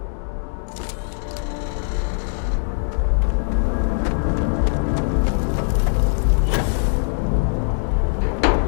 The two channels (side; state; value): right; silent; digital silence